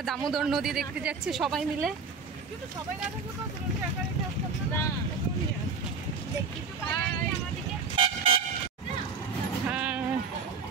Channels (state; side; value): quieter; left; 4.9 dB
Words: দামোদর নদী দেখতে যাচ্ছি সবাই মিলে। হ্যাঁ,